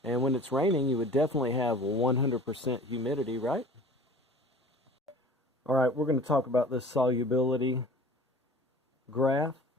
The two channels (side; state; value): both; normal; correlation 0.44